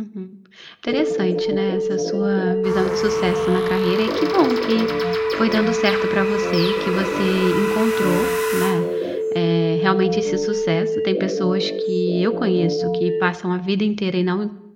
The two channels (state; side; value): identical; both; correlation 1.00